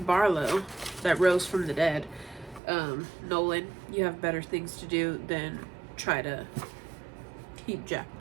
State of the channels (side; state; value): left; drops out; at 2.6 s